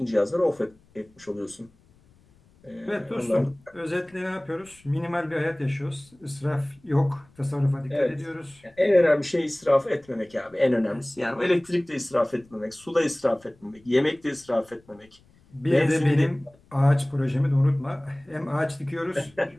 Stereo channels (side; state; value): left; noise; rumble, 30 dB below the sound